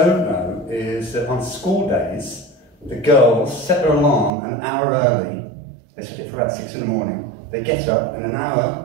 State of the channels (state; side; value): drops out; left; at 4.3 s